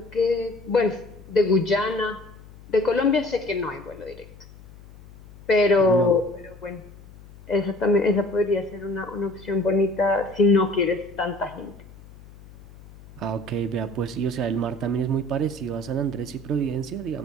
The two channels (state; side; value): noise; left; hum, 20 dB below the sound